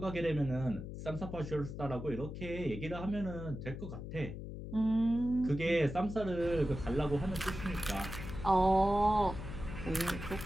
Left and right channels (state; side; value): noise; left; hum, 8 dB below the sound